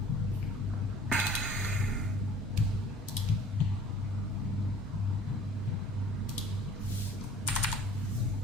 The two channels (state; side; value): normal; both; correlation 0.48